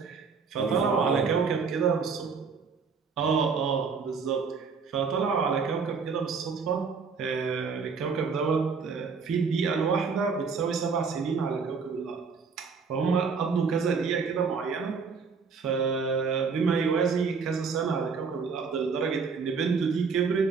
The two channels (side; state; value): left; quieter; 5.3 dB